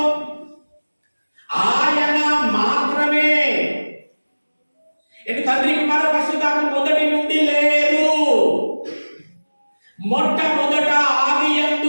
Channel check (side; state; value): both; inverted; correlation -1.00